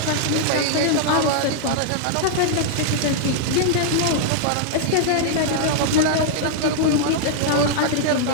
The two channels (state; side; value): different; both; correlation -0.01